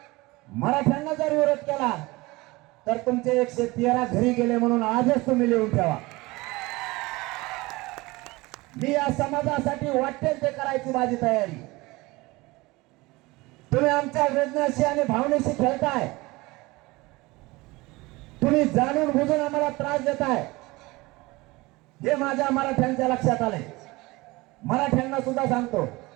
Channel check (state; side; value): quieter; left; 22.1 dB